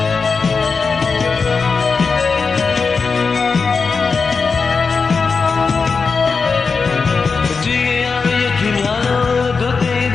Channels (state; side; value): quieter; right; 4.9 dB